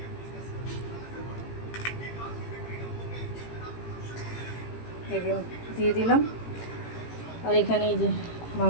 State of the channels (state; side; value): late; right; 18 ms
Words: দিয়ে দিলাম। আর এখানে এই যে